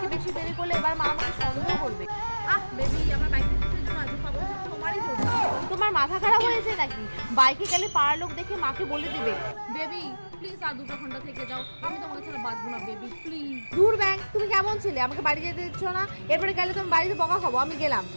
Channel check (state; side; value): inverted; both; correlation -1.00